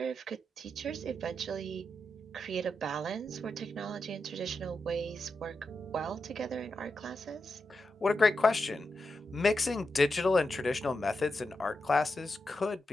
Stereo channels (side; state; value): both; normal; correlation 0.87